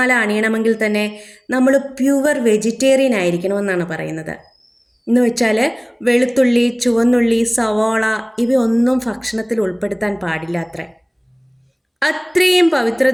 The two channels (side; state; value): both; identical; correlation 1.00